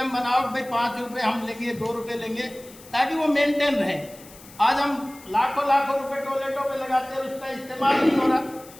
बनाओ, भाई 5 रुपये हम लेंगे, 2 रुपये लेंगे, ताकि वो मेंटेन रहे। आज हम लाखों रुपए टॉयलेटों पे लगाते हैं, उसका इस्तेमाल नहीं हो रहा।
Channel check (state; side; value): noise; left; hiss, 21 dB below the sound